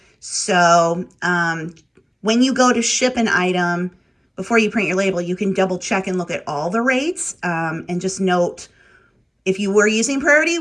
So when you go to ship an item, before you print your label, you can double check and look at all the rates, and just note if you were using priority,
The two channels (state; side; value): identical; both; correlation 1.00